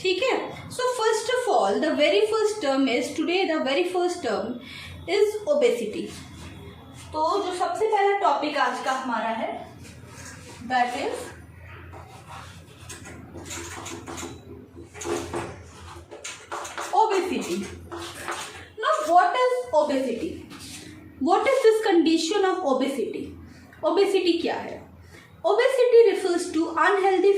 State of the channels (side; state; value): both; identical; correlation 1.00